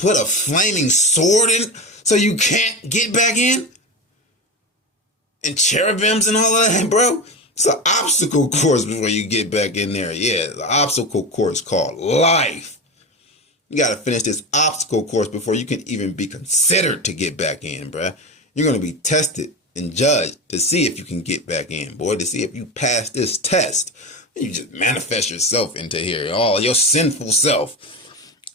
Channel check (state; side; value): normal; both; correlation 0.22